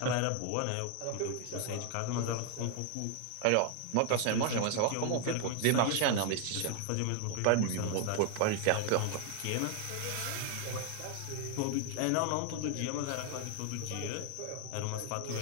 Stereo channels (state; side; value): different; both; correlation 0.00